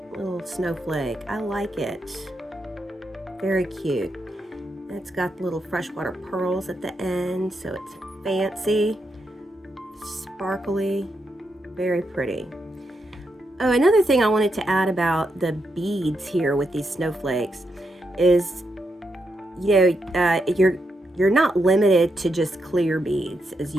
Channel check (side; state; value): both; normal; correlation 0.82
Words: snowflake. I like it. Very cute. It's got little freshwater pearls at the end, so it's fancy, sparkly, very pretty. Oh, another thing I wanted to add about the beads here with these snowflakes is, you know, you're not limited to just clear beads, as